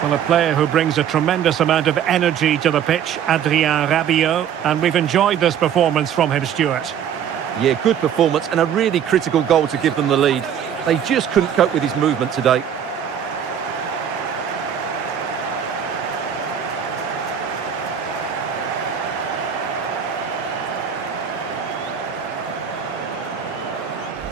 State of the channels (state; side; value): quieter; left; 8.8 dB